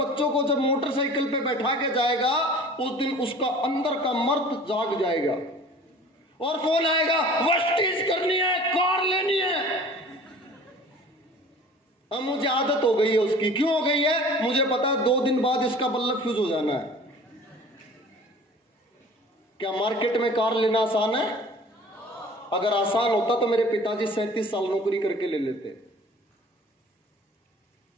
को जब मोटरसाइकिल पे बैठा के जाएगा, उस दिन उसका अंदर का मर्द जाग जाएगा और फोन आएगा, वेस्टीज करनी है, कार लेनी है। अब मुझे आदत हो गई है उसकी। क्यों हो गई है? मुझे पता है 2 दिन बाद इसका बल्ब फ्यूज हो जाना है। क्या मार्केट में कार लेना आसान है? अगर आसान होता तो मेरे पिताजी 37 साल नौकरी करके ले लेते।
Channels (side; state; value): both; normal; correlation 0.45